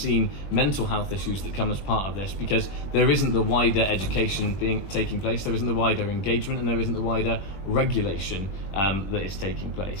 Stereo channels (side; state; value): right; late; 20 ms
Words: mental health issues that come as part of this, because there isn't the wider education taking place, there isn't the wider engagement, and there isn't the wider regulation that is taking